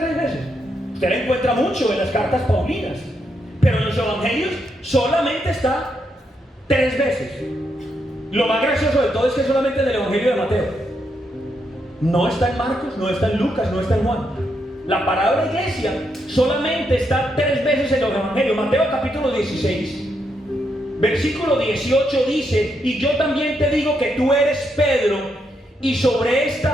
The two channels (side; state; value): both; normal; correlation 0.80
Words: veces. Usted la encuentra mucho en las cartas paulinas, pero en los evangelios solamente está 3 veces. Lo más gracioso de todo es que solamente en el evangelio de Mateo. No está en Marcos, no está en Lucas, no está en Juan. La palabra iglesia solamente está 3 veces en los evangelios. Mateo capítulo 16, versículo 18 dice: y yo también te digo que tú eres Pedro, y sobre